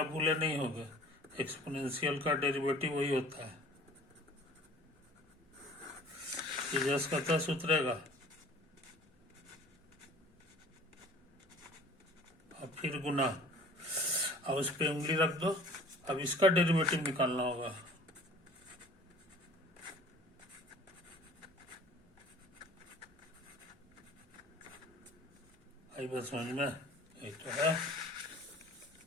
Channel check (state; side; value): normal; both; correlation 0.48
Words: भूले नहीं होगा, एक्सपोनेंशियल का डेरिवेटिव वही होता है, ये जस का तस उतरेगा और फिर गुना, अब उस पे उंगली रख दो। अब इसका डेरिवेटिव निकालना होगा। आई बस समझ में? ये तो है।